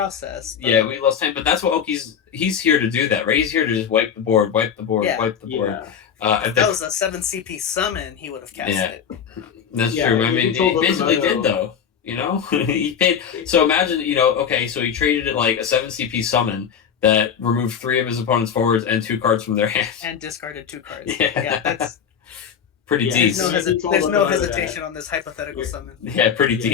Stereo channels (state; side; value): quieter; right; 7.7 dB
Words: But... Yeah, we lost Titan, but that's what he's here to do that, right? He's here to just wipe the board, wipe the board, Yeah. wipe the board. If that was a 7 CP summon, he would have cast it. That's true. I mean, he basically did though. He paid. So imagine, okay, so he traded it like a 7 CP summon that removed 3 of his opponent's forwards and 2 cards from their hand. And discarded 2 cards. Yeah. That's pretty decent. There's no hesitation on this hypothetical summon. Yeah, pretty